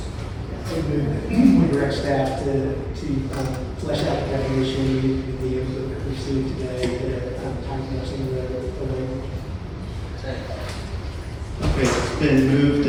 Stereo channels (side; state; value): both; identical; correlation 1.00